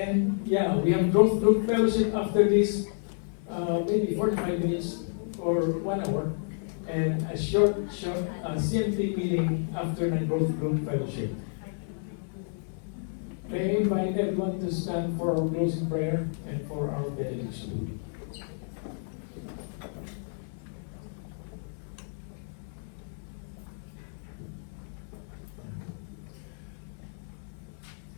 yeah, we have growth group fellowship after this, maybe 45 minutes or 1 hour. And a short CMT meeting after the growth group fellowship. May I invite everyone to stand for our closing prayer and for our benediction.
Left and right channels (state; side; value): silent; right; 58 dB below the other